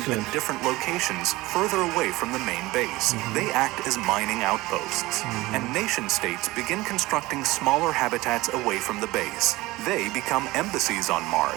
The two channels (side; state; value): left; quieter; 20.0 dB